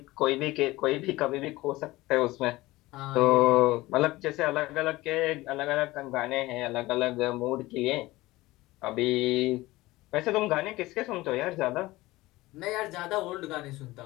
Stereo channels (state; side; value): quieter; right; 19.1 dB